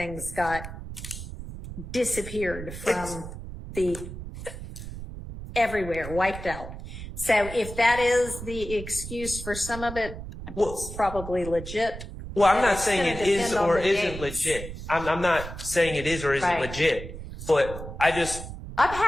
got disappeared from everywhere, wiped out. So if that is the excuse for some of it, it's probably legit. Well, I'm not saying it is or isn't legit. I'm not saying it is or isn't legit, but I'm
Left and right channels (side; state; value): right; noise; rumble, 10 dB below the sound